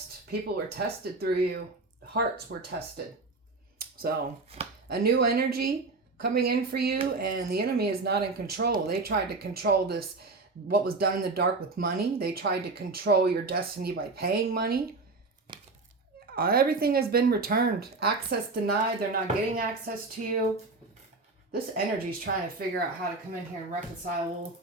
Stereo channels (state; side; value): quieter; left; 3.6 dB